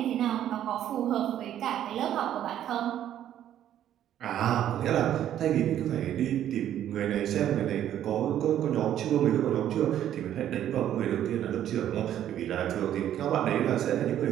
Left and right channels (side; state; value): left; quieter; 11.1 dB